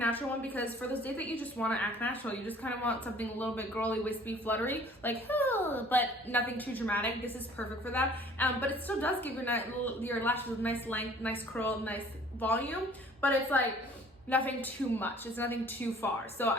one because for those days that you just want to act natural, you just kind of want something a little bit girly, wispy, fluttery, like, but nothing too dramatic. This is perfect for that. But it still does give your lashes a nice length, nice curl, nice volume, but it's like nothing too much. It's nothing too far. So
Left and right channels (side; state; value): both; normal; correlation 0.53